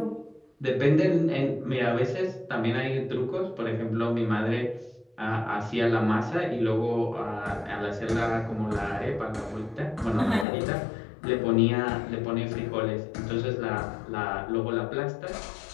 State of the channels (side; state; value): right; drops out; at 10.5 s